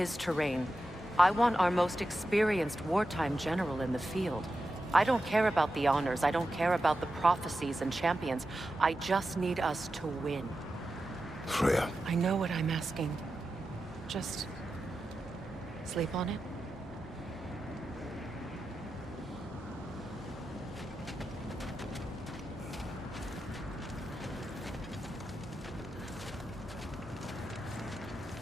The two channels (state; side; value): normal; both; correlation 0.91